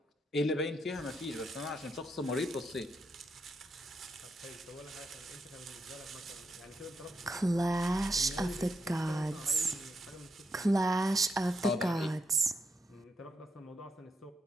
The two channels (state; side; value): normal; both; correlation 0.80